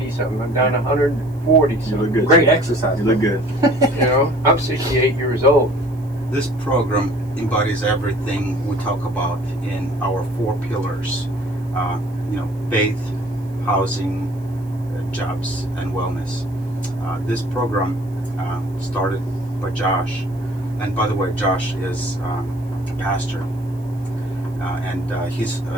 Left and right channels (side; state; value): right; noise; hiss, 29 dB below the sound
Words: something. I'm down to 140 You look something. good. Great exercise. You look good. You know, I'm 68 years old. This program embodies everything we talk about in our 4 pillars. You know, faith, housing, jobs, and wellness. This program started by Josh, and by the way, Josh is a pastor, and his